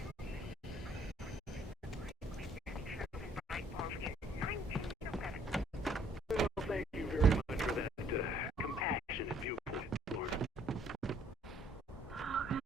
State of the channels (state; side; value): normal; both; correlation 0.62